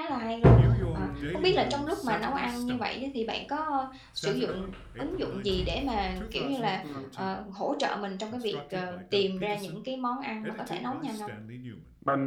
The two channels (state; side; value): identical; both; correlation 1.00